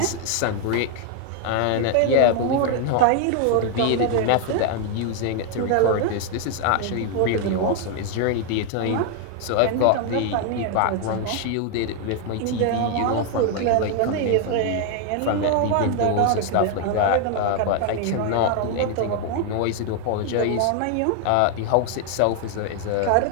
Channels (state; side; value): different; both; correlation 0.00